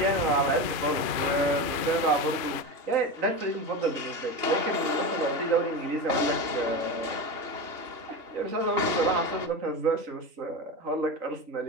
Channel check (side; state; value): left; late; 2.5 ms